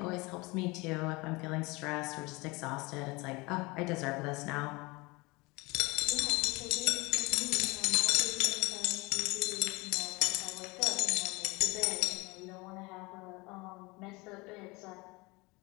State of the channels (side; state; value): right; quieter; 24.7 dB